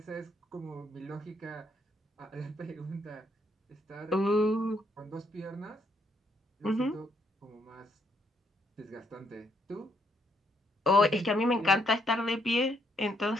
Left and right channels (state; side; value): normal; both; correlation 0.73